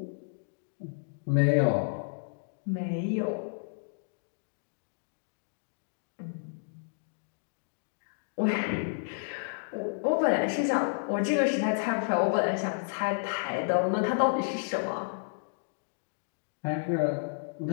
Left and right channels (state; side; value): silent; right; digital silence